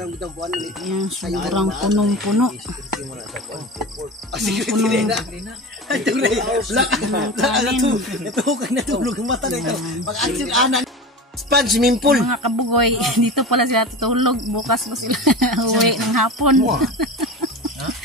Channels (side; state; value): both; normal; correlation 0.29